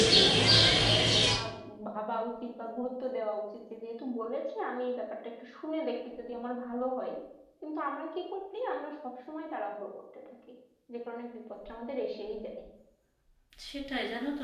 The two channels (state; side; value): identical; both; correlation 1.00